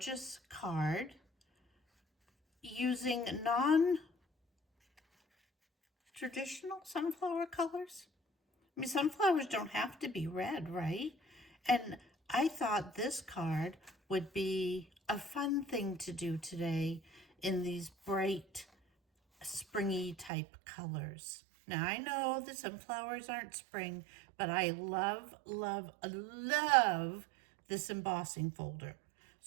card using non-traditional sunflower colors. I mean, sunflowers don't have to be red, right? And I thought this card would be a fun thing to do today in these bright, springy type colors. Now, I know that sunflowers aren't spring, but I love, love, love this embossing folder.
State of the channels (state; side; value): drops out; left; at 20.3 s